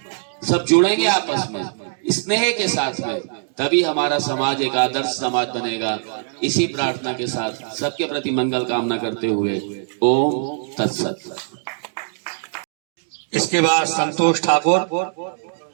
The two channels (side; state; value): left; silent; digital silence